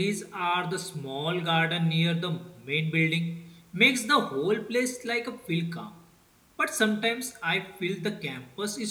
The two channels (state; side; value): identical; both; correlation 1.00